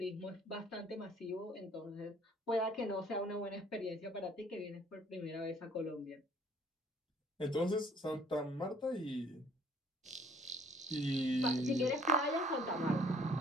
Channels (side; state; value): both; normal; correlation 0.58